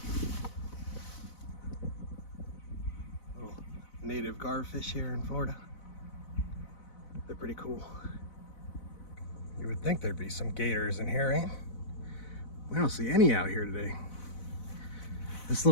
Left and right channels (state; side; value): late; right; 4.0 ms